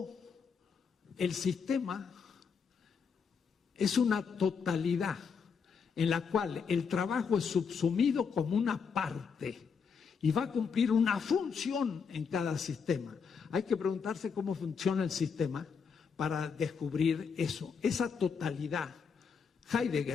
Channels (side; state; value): right; quieter; 6.0 dB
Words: el sistema es una totalidad en la cual el trabajo es subsumido como una parte y va a cumplir una función en cada sistema. Hay que preguntarse cómo funciona el sistema para descubrir eso, esa totalidad.